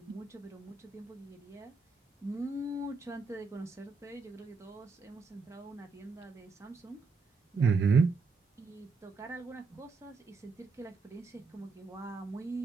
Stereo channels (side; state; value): left; quieter; 4.5 dB